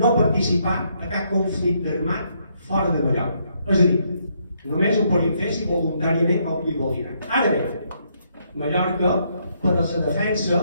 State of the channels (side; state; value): both; inverted; correlation -0.73